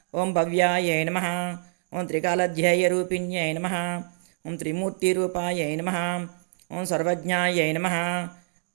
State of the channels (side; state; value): left; silent; digital silence